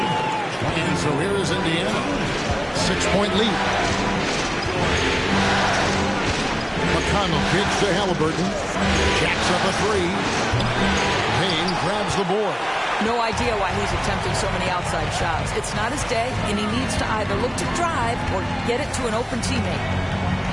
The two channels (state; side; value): identical; both; correlation 1.00